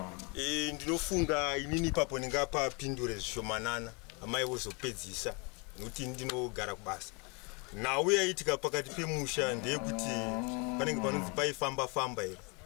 Ndinofunga inini ipapo ndingapapindure zvishomanana amai vozopedzisa nokuti ndinogara kubasa. Nhau yaitika pakati pemusha ndeyekuti panenge panonzi paifamba here.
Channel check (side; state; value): right; quieter; 31.3 dB